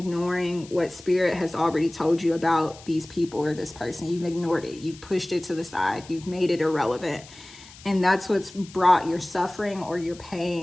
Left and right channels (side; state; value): left; noise; hiss, 20 dB below the sound